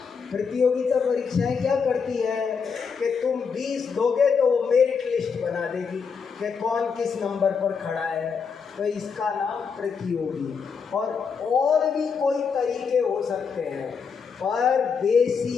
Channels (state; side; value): quieter; right; 5.9 dB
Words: प्रतियोगिता परीक्षाएं क्या करती है कि तुम 20 दोगे तो वो मेरिट लिस्ट बना देगी कि कौन किस नंबर पर खड़ा है, तो इसका नाम प्रतियोगी। और भी कोई तरीके हो सकते हैं, पर